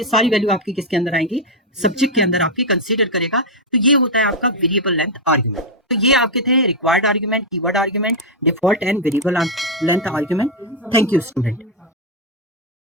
सारी वैल्यू आपकी किसके अंदर आएंगी, सब्जेक्ट के अंदर आपकी कंसीडर करेगा। तो ये होता है आपका वेरिएबल लेंथ आर्गुमेंट। तो ये आपके थे required argument, keyword argument, default and variable length argument. Thank you student.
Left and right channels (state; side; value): normal; both; correlation 0.00